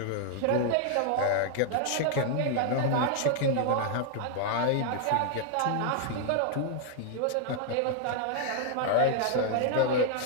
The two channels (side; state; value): both; different; correlation 0.00